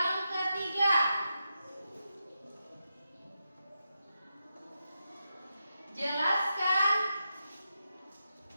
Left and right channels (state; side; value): inverted; both; correlation -0.88